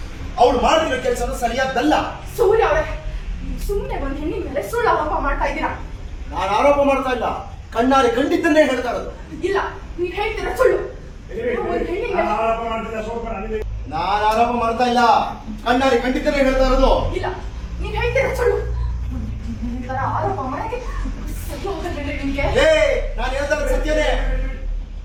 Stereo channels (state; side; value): identical; both; correlation 1.00